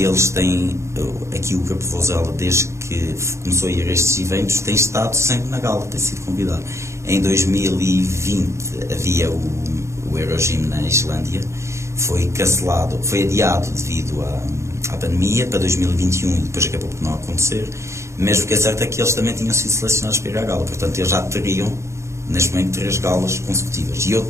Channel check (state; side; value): late; left; 0.14 ms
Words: têm, aqui o Campo Vozela, desde que começou a ir a estes eventos, tem estado sempre na gala, tem sido convidado. Em 2020 havia o Eurogym na Islândia, foi cancelado, foi adiado devido à pandemia para 2021, e depois acabou por não acontecer. Mas o que é certo é que eles também tinham sido selecionados para ir à gala, portanto eles já teriam neste momento 3 galas consecutivas. E eu